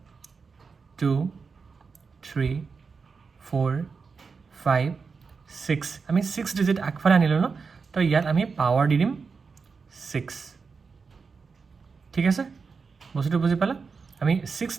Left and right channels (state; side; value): quieter; left; 5.1 dB